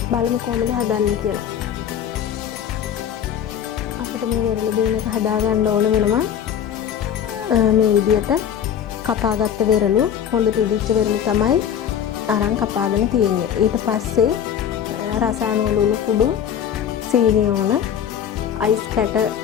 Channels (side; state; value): right; quieter; 9.0 dB